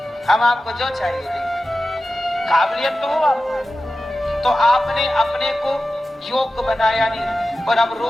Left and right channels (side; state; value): both; normal; correlation 0.94